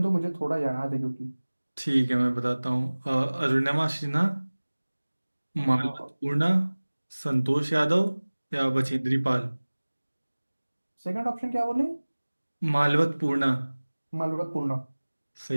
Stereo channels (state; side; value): inverted; both; correlation -1.00